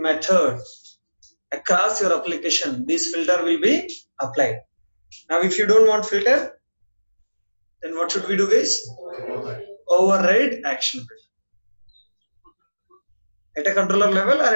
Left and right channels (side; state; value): both; inverted; correlation -1.00